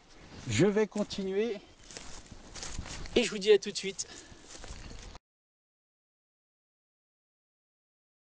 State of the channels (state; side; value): identical; both; correlation 1.00